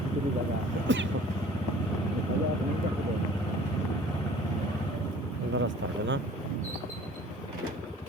কিছু জায়গা সুন্দর রাস্তা হবে না?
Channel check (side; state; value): both; normal; correlation 0.49